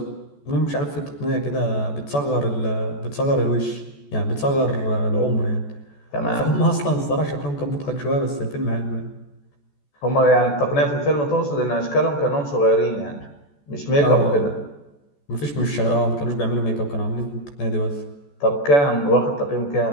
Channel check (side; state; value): right; late; 14 ms